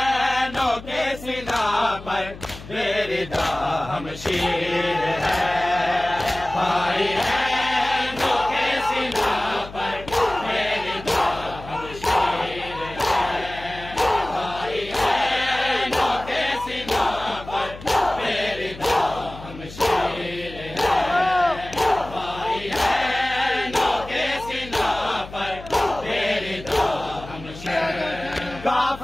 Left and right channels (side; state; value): left; noise; hum, 15 dB below the sound